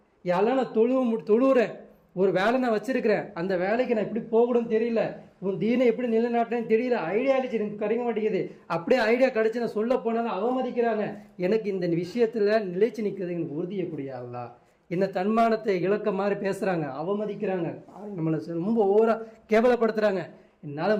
யாரெல்லாம் நான் தொழுவுறேன், ஒரு வேலை நான் வச்சிருக்கிறேன், அந்த வேலைக்கு நான் எப்படி போகணும்னு தெரியல, உன் தீனை எப்படி நிலைநாட்டுறேன்னு தெரியல, ஐடியா அழிச்சு எனக்கு கிடைக்க மாட்டேங்குது. அப்படியே ஐடியா கிடைச்சி நான் சொல்ல போனாலும் அவமதிக்கிறாங்க. எனக்கு இந்த விஷயத்துல நிலைச்சு நிற்கிறது எனக்கு உறுதியக்கூடிய அல்லா. என்ன தன்மானத்தை இழக்க மாதிரி பேசுறாங்க, அவமதிக்கிறாங்க, நம்மளை ரொம்ப ஓவரா கேவலப்படுத்துறாங்க.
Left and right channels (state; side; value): identical; both; correlation 1.00